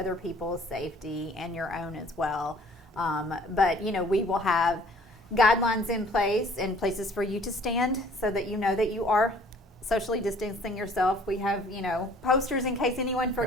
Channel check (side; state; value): both; normal; correlation 0.55